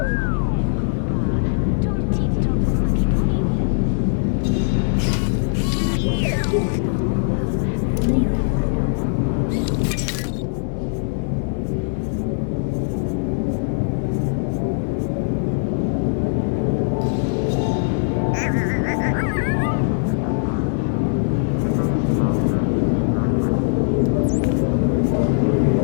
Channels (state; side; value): silent; right; digital silence